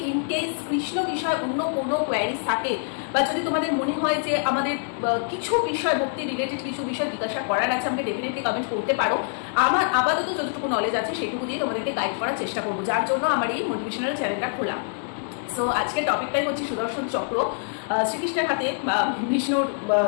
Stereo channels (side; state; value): right; silent; digital silence